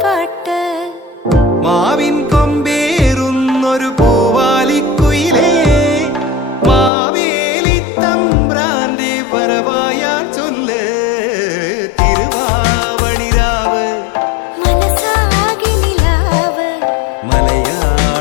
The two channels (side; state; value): right; drops out; at 6.9 s